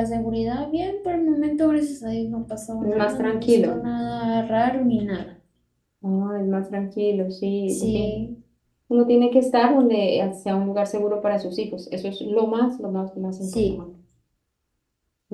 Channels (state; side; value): identical; both; correlation 1.00